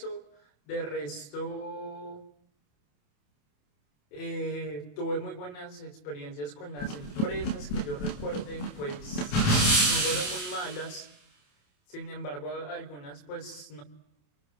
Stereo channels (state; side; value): late; right; 27 ms